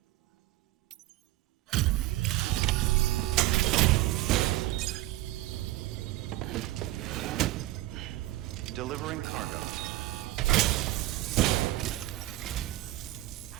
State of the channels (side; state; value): left; quieter; 16.8 dB